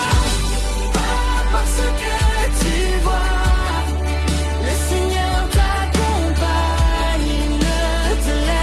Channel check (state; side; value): identical; both; correlation 1.00